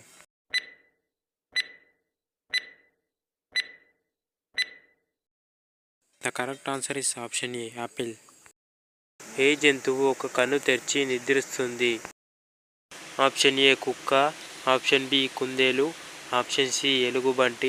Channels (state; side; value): identical; both; correlation 1.00